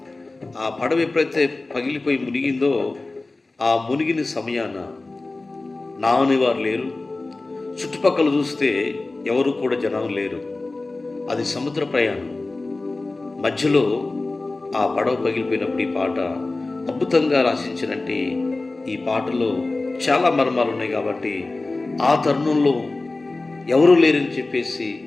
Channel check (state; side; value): quieter; right; 3.2 dB